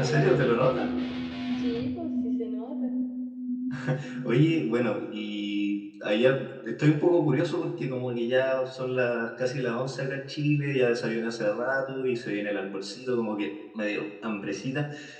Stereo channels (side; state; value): both; identical; correlation 1.00